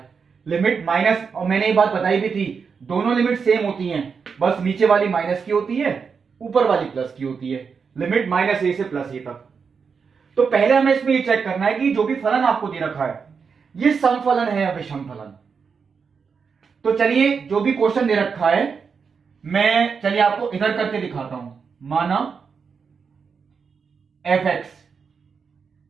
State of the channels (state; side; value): quieter; left; 5.8 dB